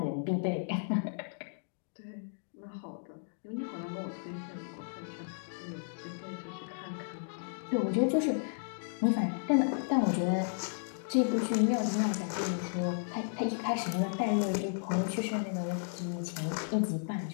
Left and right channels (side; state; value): right; silent; digital silence